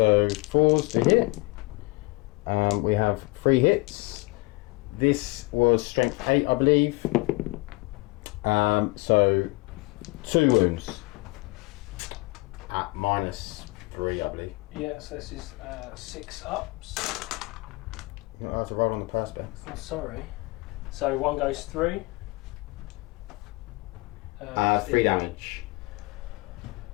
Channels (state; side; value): quieter; right; 24.2 dB